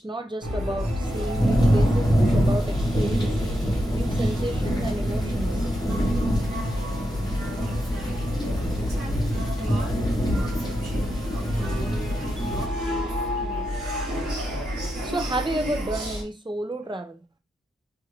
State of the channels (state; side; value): normal; both; correlation 0.85